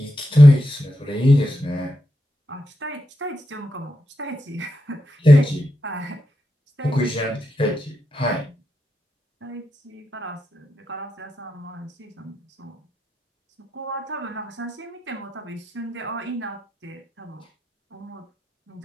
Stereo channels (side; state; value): both; normal; correlation 0.86